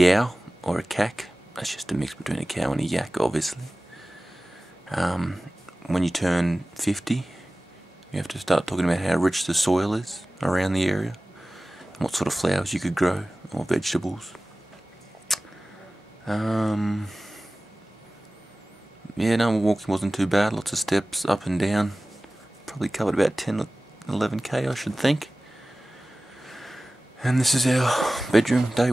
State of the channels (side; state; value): both; normal; correlation 0.97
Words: or a cack. That's just a mix between a cow and a yak, obviously. When you turn 50, you have to start talking about how rich the soil is around the area, and what sort of flowers you could grow, or vegetables. Yeah, no, walking wasn't too bad. Lots of steps up and down. Probably covered about 10 or 11k, I should think. And this is our bedroom, day